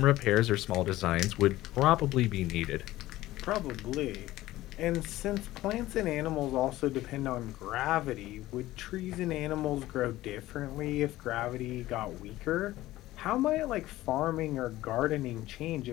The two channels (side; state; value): right; quieter; 16.3 dB